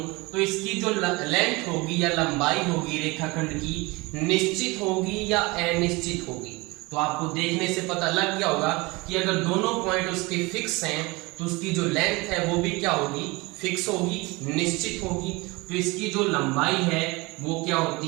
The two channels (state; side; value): quieter; left; 24.2 dB